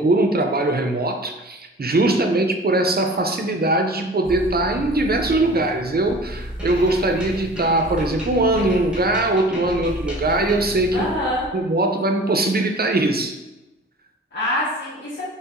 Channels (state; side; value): normal; both; correlation 0.42